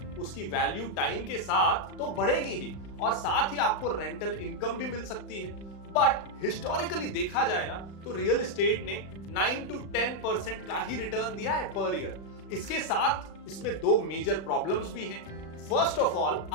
उसकी वैल्यू टाइम के साथ तो बढ़ेगी ही, और साथ ही आपको रेंटल इनकम भी मिल सकती है। बट हिस्टोरिकली देखा जाए ना तो रियल एस्टेट ने 9 to 10% का ही रिटर्न दिया है पर ईयर। इसके साथ इसमें 2 मेजर प्रॉब्लम्स भी हैं। फर्स्ट ऑफ ऑल,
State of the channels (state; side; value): late; right; 36 ms